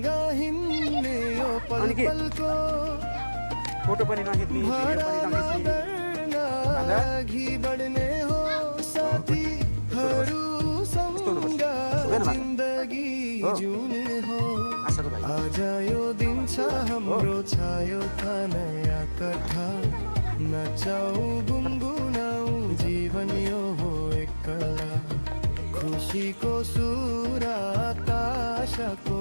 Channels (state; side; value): inverted; both; correlation -1.00